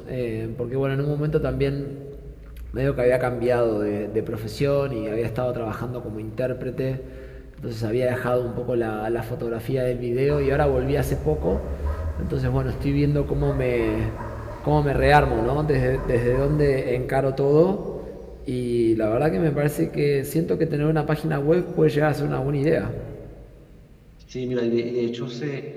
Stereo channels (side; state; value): both; identical; correlation 1.00